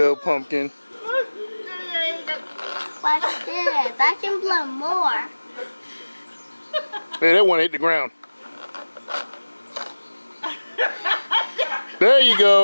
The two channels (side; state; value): both; inverted; correlation -1.00